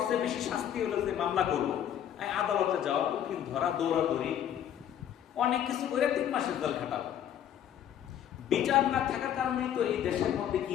চেয়ে বেশি শাস্তি হলো যে মামলা করবো, আদালতে যাওয়া, উকিল ধরা, দৌড়াদৌড়ি, অনেক কিছু করে 3 মাসের জেল খাটাবো। বিচার না থাকার কারণেই তো এই দেশের মধ্যে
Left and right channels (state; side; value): quieter; right; 10.1 dB